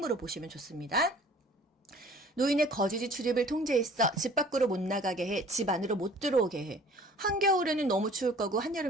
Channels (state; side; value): normal; both; correlation 0.50